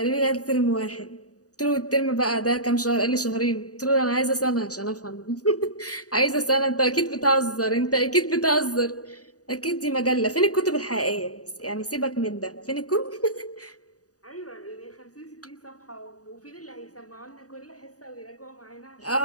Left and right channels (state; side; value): late; right; 0.67 ms